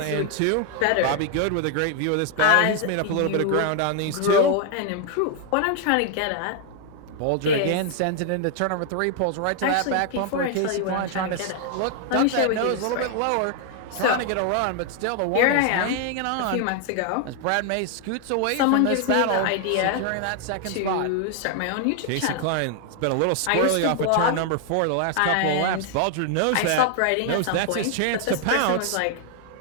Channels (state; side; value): different; both; correlation 0.00